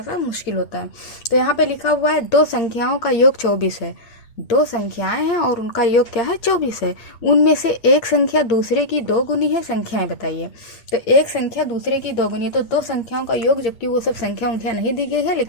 सा मुश्किल होता है। तो यहाँ पे लिखा हुआ है दो संख्याओं का योग 24 है। दो संख्याएं हैं और उनका योग क्या है? 24 है। उनमें से एक संख्या दूसरे की दो गुनी है। संख्याएं बताइए। तो एक संख्या दूसरे की दो गुनी है, तो दो संख्याओं का योग, जबकि वो सब संख्या उंख्या नहीं दी गई है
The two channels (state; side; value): late; right; 8.3 ms